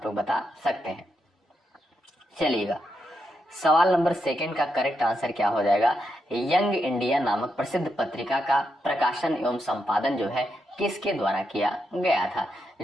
लोग बता सकते हैं। चलिएगा, सवाल नंबर सेकंड का करेक्ट आंसर क्या हो जाएगा? यंग इंडिया नामक प्रसिद्ध पत्रिका का प्रकाशन एवं संपादन जो है किसके द्वारा किया गया था?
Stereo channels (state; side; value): normal; both; correlation 0.83